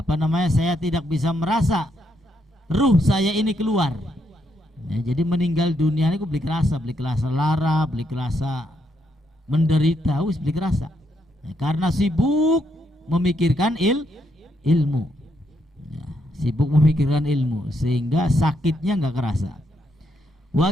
saya tidak bisa merasa ruh saya ini keluar. Ya, jadi meninggal dunia ini beli kerasa lara, beli kerasa menderita, beli kerasa. Ya, karena sibuk memikirkan ilmu. Ya, sibuk memikirkan ilmu sehingga sakitnya nggak kerasa.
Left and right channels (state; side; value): normal; both; correlation 0.77